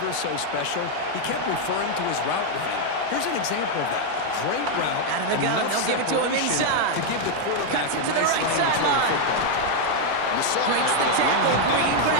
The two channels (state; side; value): different; both; correlation 0.00